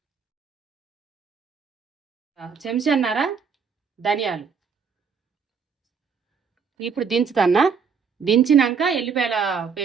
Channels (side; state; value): left; quieter; 6.0 dB